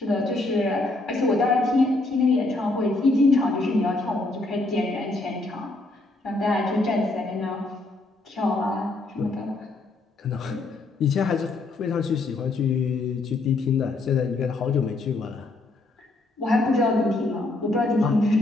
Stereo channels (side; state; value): right; quieter; 3.0 dB